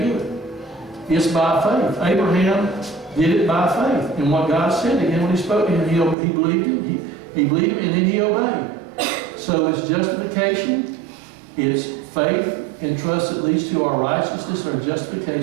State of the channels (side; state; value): left; drops out; at 6.2 s